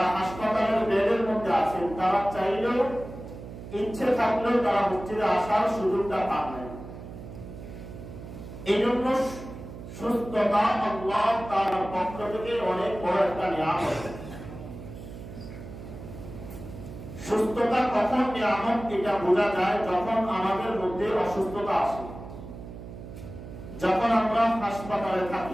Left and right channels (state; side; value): noise; right; hum, 12 dB below the sound